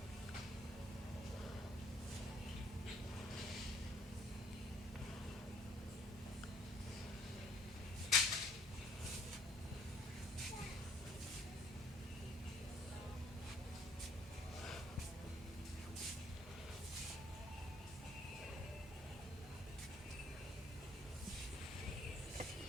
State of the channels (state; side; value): normal; both; correlation 0.59